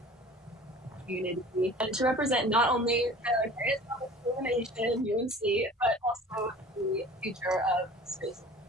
community and to represent not only the greatest public school in the nation, UNC, but also the future of space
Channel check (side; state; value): both; normal; correlation 0.44